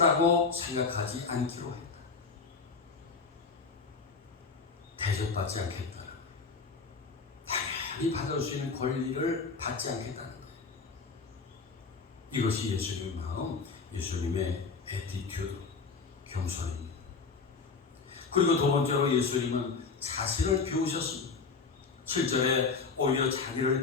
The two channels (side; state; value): right; quieter; 4.8 dB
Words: 생각하지 않기로 했다. 대접받지 않겠다. 당연히 받을 수 있는 권리를 받지 않겠다는 거예요. 이것이 예수님의 마음, 예수님의 애티튜드, 겸손입니다. 그리고 두 번째로 예수님은 자신을 비우셨습니다. 7절에 오히려